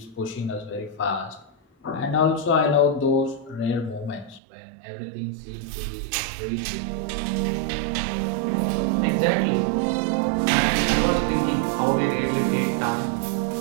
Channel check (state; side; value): drops out; left; at 4.4 s